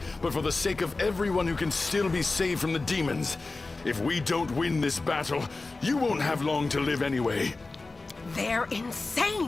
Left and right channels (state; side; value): quieter; right; 3.5 dB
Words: but for the sake of everyone who can still be saved from the demons. If we don't win this battle, you won't have long to live anyway. They're